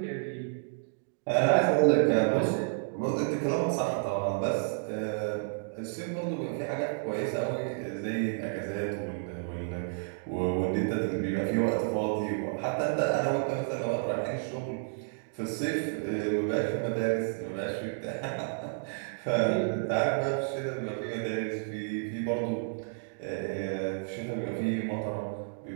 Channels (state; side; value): silent; left; digital silence